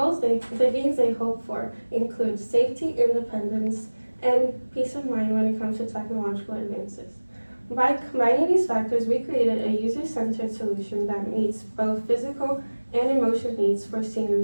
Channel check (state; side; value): inverted; both; correlation -1.00